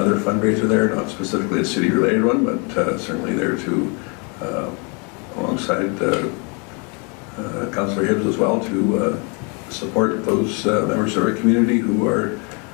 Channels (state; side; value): quieter; right; 34.3 dB